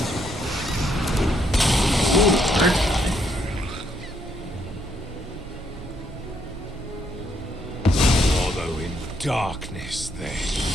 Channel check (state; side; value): normal; both; correlation 0.73